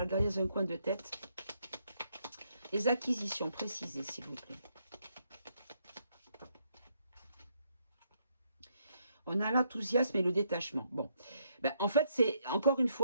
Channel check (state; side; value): inverted; both; correlation -0.75